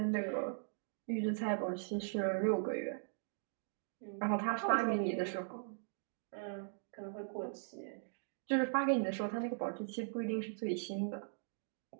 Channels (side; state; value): left; silent; digital silence